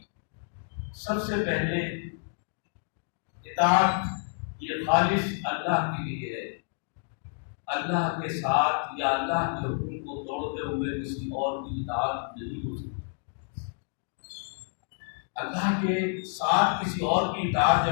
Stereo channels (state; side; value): silent; right; 58 dB below the other